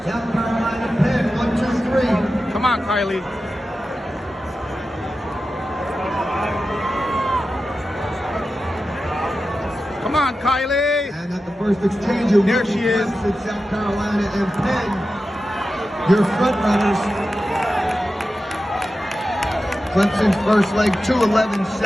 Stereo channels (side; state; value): both; normal; correlation 0.92